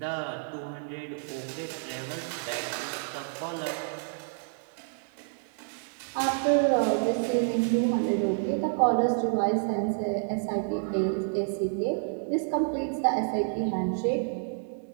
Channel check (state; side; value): silent; left; digital silence